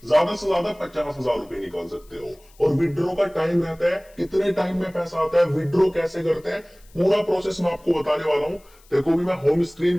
ज्यादा से ज्यादा 50,000 रुपए निकाल सकते हो। और विड्रॉ का टाइम रहता है, कितने टाइम में पैसा आता है, विड्रॉ कैसे करते हैं, पूरा प्रोसेस मैं आपको बताने वाला हूं। देखो, भी मैं होम स्क्रीन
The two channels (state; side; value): noise; left; hiss, 29 dB below the sound